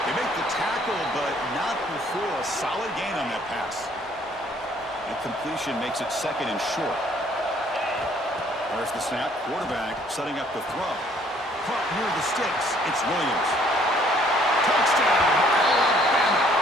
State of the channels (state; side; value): normal; both; correlation 0.61